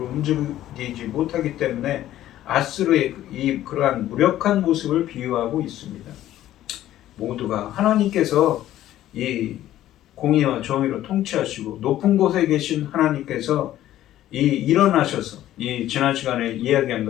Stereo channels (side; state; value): right; quieter; 13.3 dB